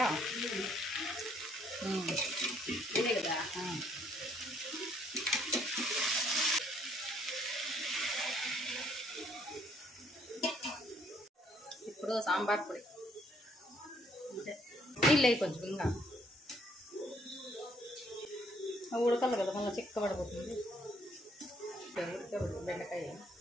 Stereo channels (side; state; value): both; normal; correlation 0.67